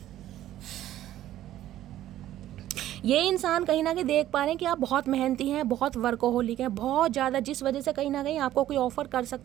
ये इंसान कहीं ना कहीं देख पा रहे हैं कि आप बहुत मेहनती हैं, बहुत वर्कोहोलिक हैं, बहुत ज़्यादा, जिस वजह से कहीं ना कहीं आपको कोई ऑफर कर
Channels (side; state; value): left; quieter; 13.2 dB